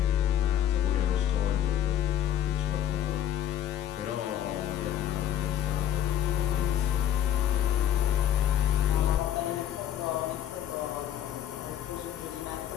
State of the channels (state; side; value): quieter; right; 10.5 dB